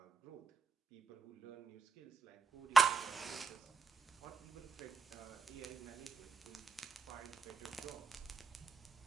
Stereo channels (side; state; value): left; quieter; 4.6 dB